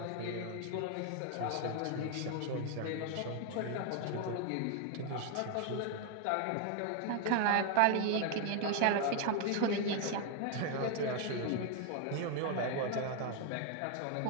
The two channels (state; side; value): different; both; correlation 0.01